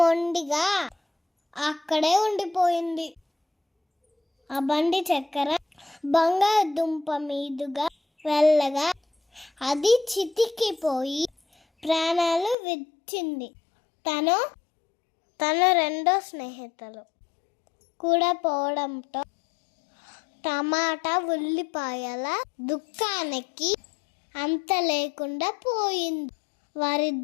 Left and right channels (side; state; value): right; drops out; at 12.6 s